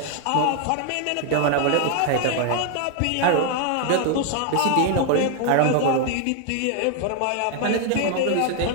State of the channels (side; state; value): both; different; correlation 0.01